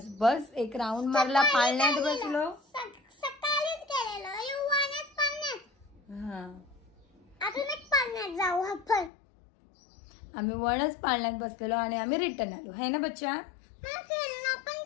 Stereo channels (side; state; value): right; drops out; at 9.1 s